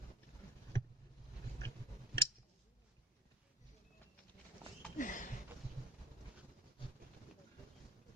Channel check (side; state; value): both; normal; correlation 0.42